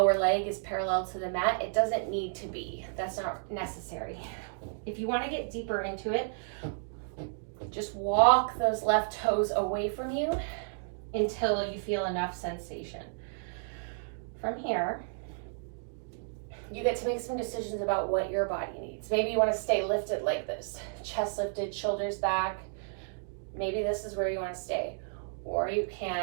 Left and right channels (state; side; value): silent; left; digital silence